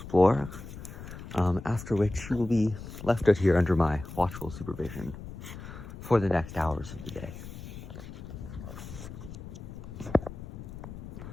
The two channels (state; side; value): noise; left; rumble, 11 dB below the sound